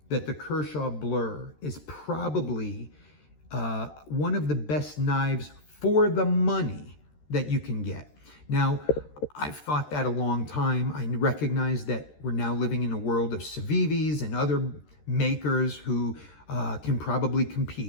that the Kershaw Blur is probably one of the best knives for the money that you can get. Now, I've thought that a long time. I recognize that we're now living in a world of Civivis and other makers who can probably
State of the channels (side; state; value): right; late; 13 ms